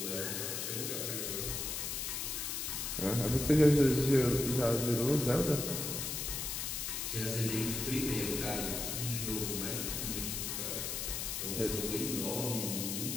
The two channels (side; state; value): left; noise; hiss, 2 dB below the sound